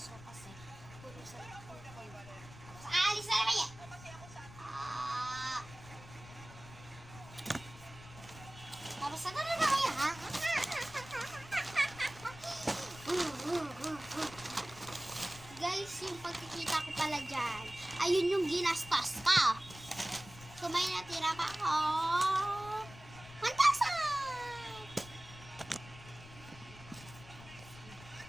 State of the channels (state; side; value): noise; left; rumble, 17 dB below the sound